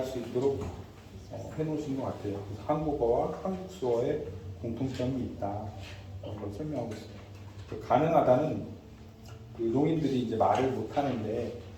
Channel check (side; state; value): both; identical; correlation 1.00